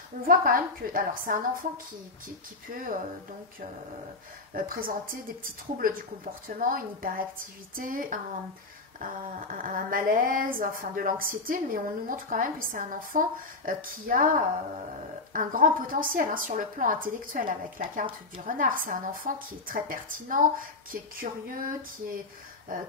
on voit quand même que, alors c'est un enfant qui peut présenter des petits troubles du comportement, une hyperactivité, un malaise, enfin de l'anxiété, mais on nous montre quand même que c'est un enfant qui a un grand potentiel hein, sur le plan intellectuel avec la carte du renard. C'est un enfant qui est très pertinent, qui est curieux, qui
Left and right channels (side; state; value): right; quieter; 3.5 dB